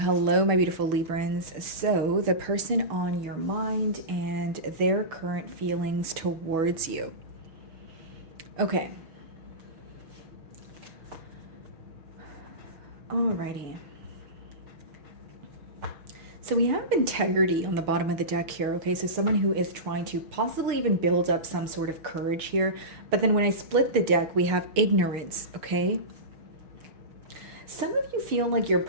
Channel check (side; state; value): left; late; 6.3 ms